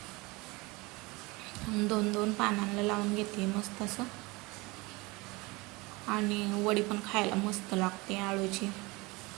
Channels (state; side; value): quieter; left; 24.0 dB